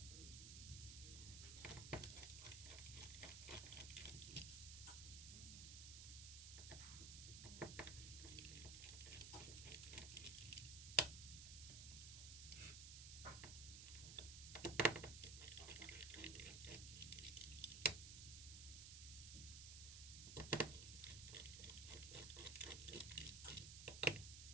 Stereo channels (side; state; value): right; noise; hiss, 7 dB below the sound